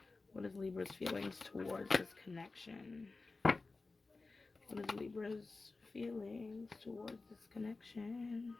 What is Libra's feelings towards this connection? What is Libra's feelings towards this connection?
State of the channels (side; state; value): right; quieter; 3.7 dB